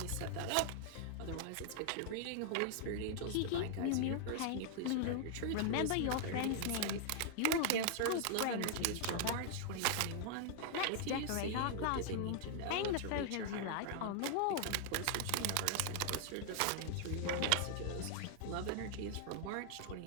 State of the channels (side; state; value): both; different; correlation -0.01